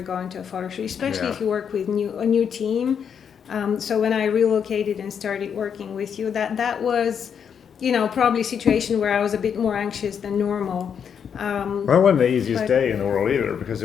go into a photo shoot, especially if you work with a new team. So when I relocated and started working with you, that was, probably a situation where I was a bit more anxious than normal. Well, that wasn't the easiest day in the world either, because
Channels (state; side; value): quieter; right; 7.5 dB